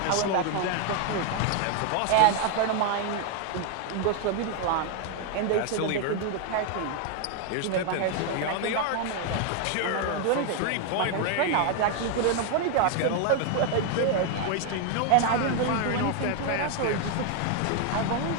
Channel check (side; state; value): both; different; correlation 0.01